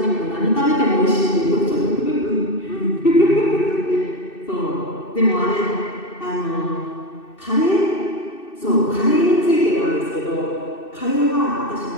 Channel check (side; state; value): right; late; 2.6 ms